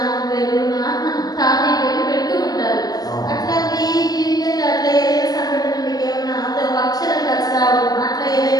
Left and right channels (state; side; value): late; right; 0.19 ms